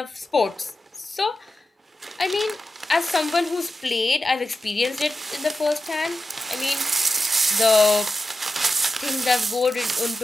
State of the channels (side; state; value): both; normal; correlation 0.90